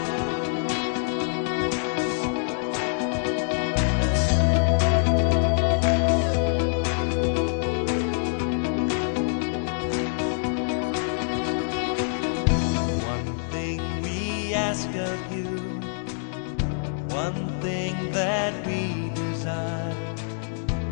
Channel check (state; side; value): silent; right; digital silence